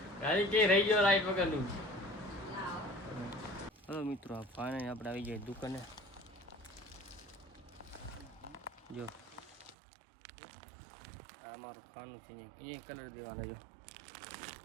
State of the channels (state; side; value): drops out; left; at 9.8 s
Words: ગાડી કે રહી ગયો લાઈટ વગરનું. હલો મિત્રો ફાઇનલી આપણે આવી જાય દુકાને. જો આ મારું ખાનું છે અહીંયા કલર દેવાના. જો